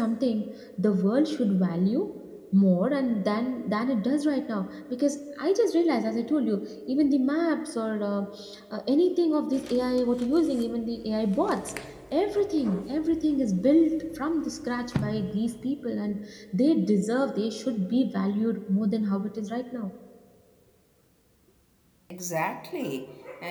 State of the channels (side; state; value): both; identical; correlation 1.00